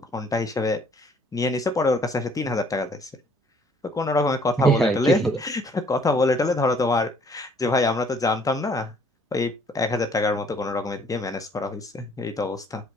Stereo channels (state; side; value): normal; both; correlation 0.60